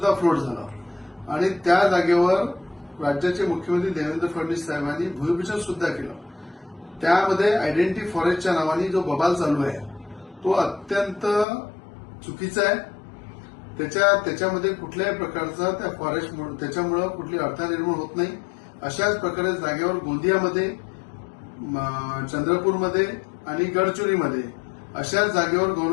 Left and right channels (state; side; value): drops out; right; at 11.5 s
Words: फ्लोट झालं आणि त्या जागेवर राज्याचे मुख्यमंत्री देवेंद्र फडणवीस साहेबांनी भूमिपूजन सुद्धा केलं. त्यामध्ये आयडेंटिटी फॉरेस्टच्या नावाने जो बबाल चालू आहे तो अत्यंत चुकीचा आहे. त्याच्यामध्ये कुठल्याही प्रकारचा त्या फॉरेस्ट त्याच्यामुळे कुठली अडथळा निर्माण होत नाही. अशाच प्रकारे जागेवर गोंदियामध्ये, चंद्रपूरमध्ये आणि गडचिरोलीमध्ये अशाच जागेवर